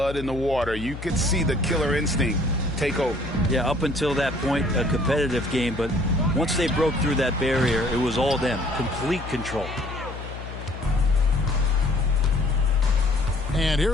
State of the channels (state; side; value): noise; left; hum, 10 dB below the sound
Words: in the water, you could see the killer instinct take over. Yeah, up until that point, a competitive game. But once they broke through that barrier, it was all them. Complete control. And